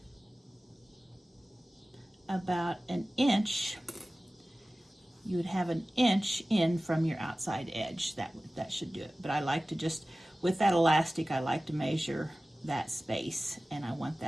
about an inch. You would have an inch in from your outside edge. That should do it. But I like to just, with that elastic, I like to measure that space, and I want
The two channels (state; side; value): normal; both; correlation 0.97